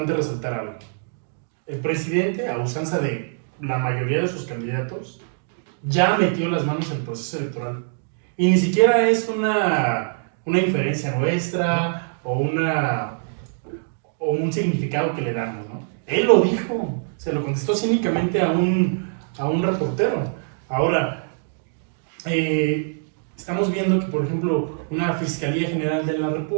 resaltar algo. El presidente, a usanza de la mayoría de sus candidatos, ya metió las manos en el proceso electoral. Y ni siquiera es una inferencia nuestra o un significado que le damos, ¿no? Él lo dijo, se lo contestó cínicamente a un reportero. Ahora, estamos viendo que, por ejemplo, una Fiscalía General de la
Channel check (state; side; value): silent; left; digital silence